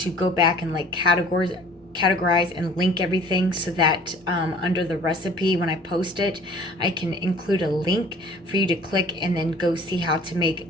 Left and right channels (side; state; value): both; normal; correlation 0.51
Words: go back and like categorize and link everything so that under the recipe, when I post it, I can include a link for you to click and then go see how to make